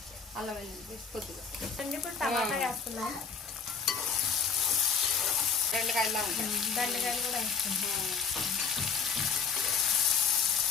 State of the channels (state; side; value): quieter; right; 5.8 dB